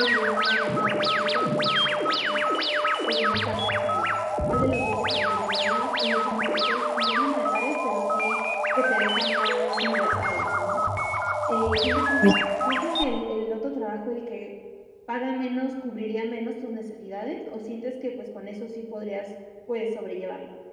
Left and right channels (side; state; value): both; identical; correlation 1.00